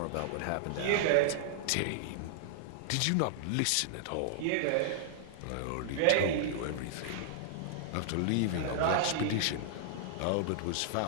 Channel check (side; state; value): both; different; correlation -0.01